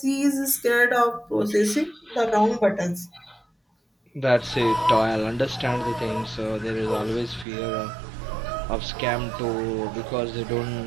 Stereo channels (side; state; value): left; drops out; at 7.5 s